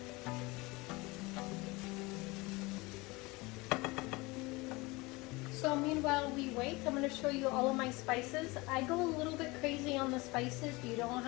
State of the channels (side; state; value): right; quieter; 23.7 dB